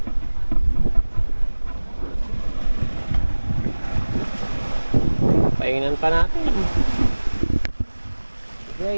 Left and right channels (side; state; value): both; inverted; correlation -1.00